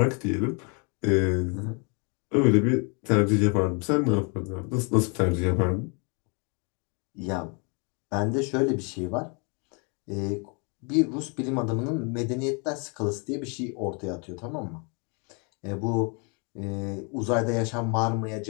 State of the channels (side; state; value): right; quieter; 35.1 dB